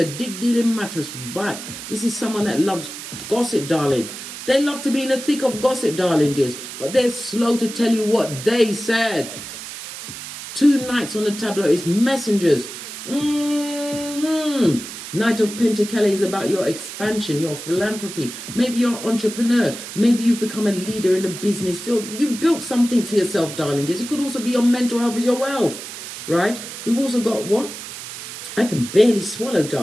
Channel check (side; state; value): right; noise; hiss, 10 dB below the sound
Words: dig-dealing mattress back. This is someone that loves gossip, darlings. They love to be in the thick of gossip, darling dears, but they're slow to tell you what they said. 2 knights on the tableau is messengers. Knight of Pentacles is about your expansion, your philanthropy. Maybe you're an entrepreneur. Maybe you've become a leader in the business field. You've built something for yourself, darling dears. It could also be your mental health as your wealth, right? We've also got what? I can barely swallow,